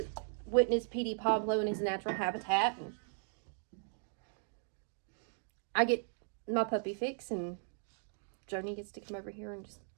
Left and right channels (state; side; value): silent; left; 53 dB below the other